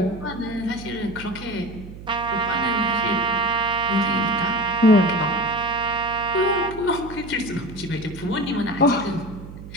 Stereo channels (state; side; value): noise; right; hum, 14 dB below the sound